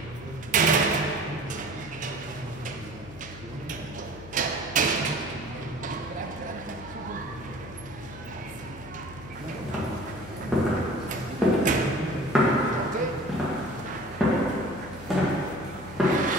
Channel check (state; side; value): noise; left; hum, 15 dB below the sound